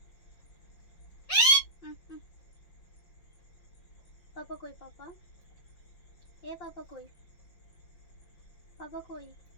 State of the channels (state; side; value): late; right; 5.5 ms